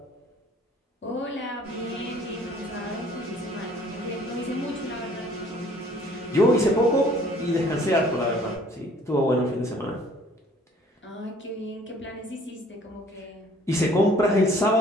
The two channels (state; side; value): normal; both; correlation 0.56